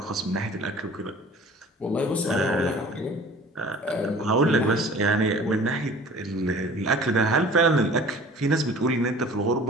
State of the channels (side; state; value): both; normal; correlation 0.45